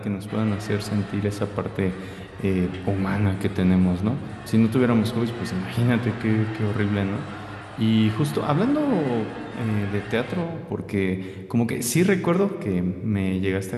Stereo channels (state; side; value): identical; both; correlation 1.00